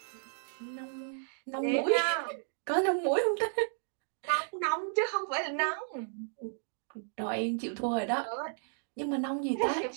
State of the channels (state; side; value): silent; left; digital silence